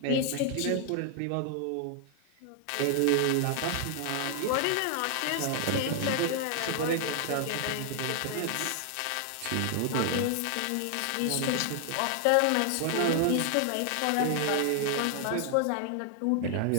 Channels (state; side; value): different; both; correlation 0.00